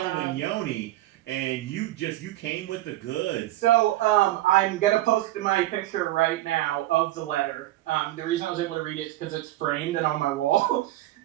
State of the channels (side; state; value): left; quieter; 15.9 dB